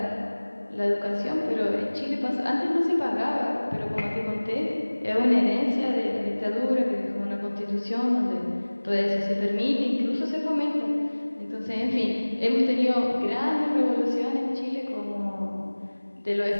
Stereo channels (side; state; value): both; inverted; correlation -1.00